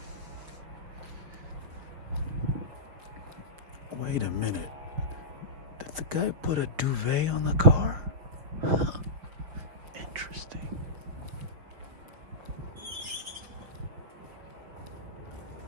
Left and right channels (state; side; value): late; left; 5.9 ms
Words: guy put a duvet on the car? Huh. Interesting.